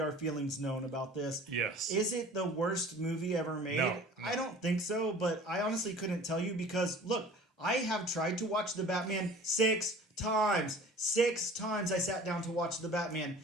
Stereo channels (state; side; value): normal; both; correlation 0.45